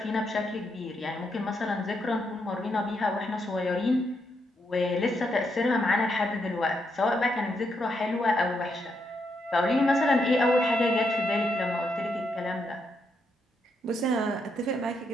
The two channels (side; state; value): both; normal; correlation 0.80